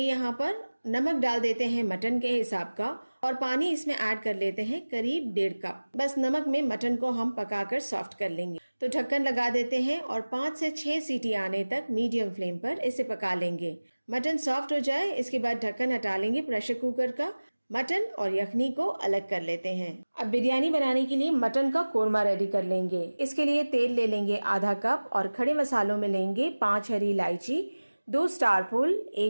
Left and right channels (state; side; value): inverted; both; correlation -1.00